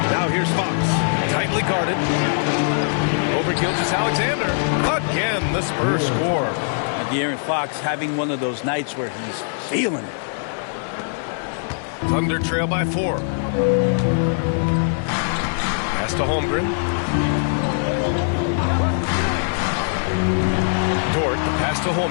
Now here's Fox. Tightly guarded. Over Gilgeous-Alexander. Again, the Spurs score. And De'Aaron Fox having one of those nights where he's feeling it. Thunder trail by 4. Pass to Holmgren. Dort, the pass to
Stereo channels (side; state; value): right; silent; digital silence